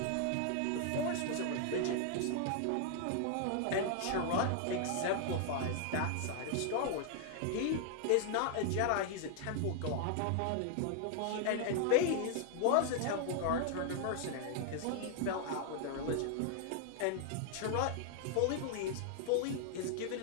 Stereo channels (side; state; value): both; different; correlation 0.00